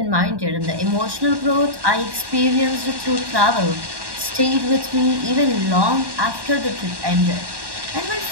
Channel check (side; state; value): left; late; 1.1 ms